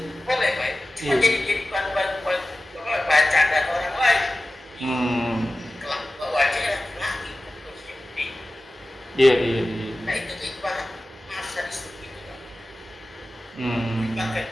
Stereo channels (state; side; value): normal; both; correlation 0.96